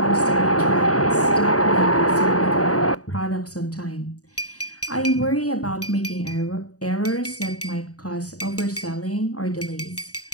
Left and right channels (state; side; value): late; right; 0.67 ms